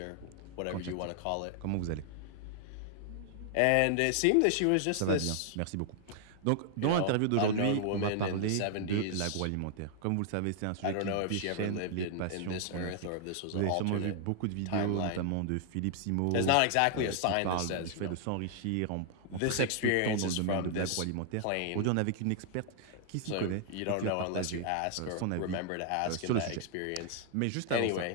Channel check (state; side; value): different; both; correlation -0.01